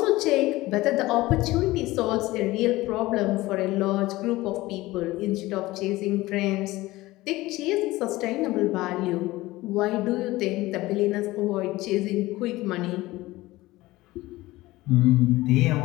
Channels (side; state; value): right; quieter; 18.7 dB